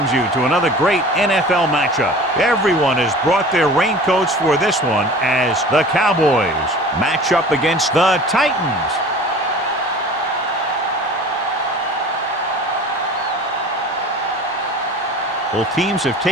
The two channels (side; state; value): both; normal; correlation 0.41